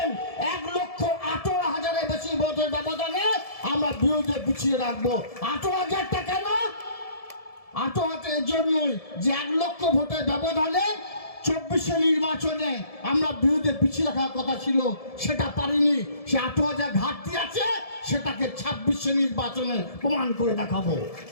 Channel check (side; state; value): right; late; 1.7 ms